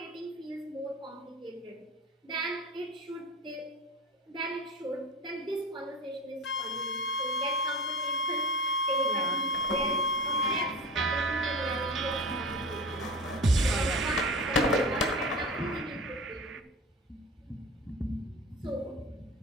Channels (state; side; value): normal; both; correlation 0.31